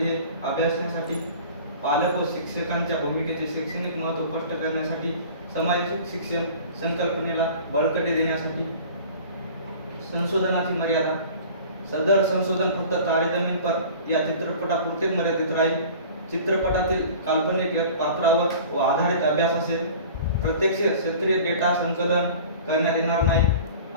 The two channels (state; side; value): inverted; both; correlation -0.43